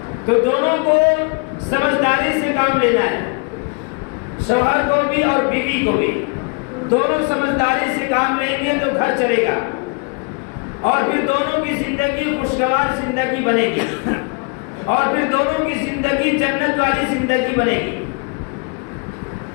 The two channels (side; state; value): right; quieter; 34.5 dB